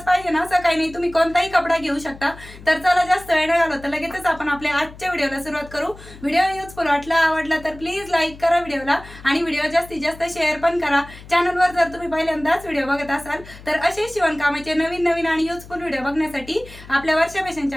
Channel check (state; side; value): noise; left; hum, 18 dB below the sound